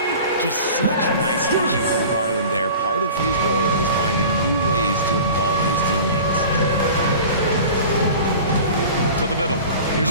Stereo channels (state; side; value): inverted; both; correlation -0.39